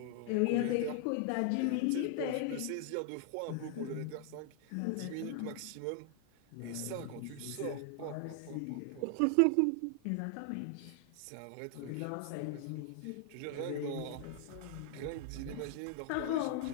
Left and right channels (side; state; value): both; different; correlation 0.00